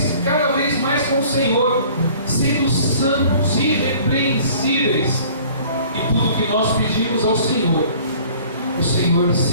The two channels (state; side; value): inverted; both; correlation -0.51